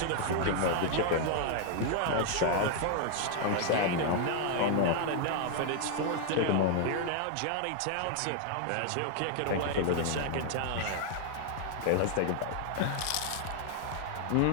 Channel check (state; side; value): different; both; correlation 0.00